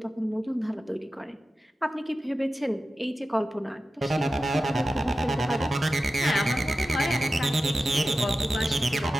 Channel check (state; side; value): normal; both; correlation 0.93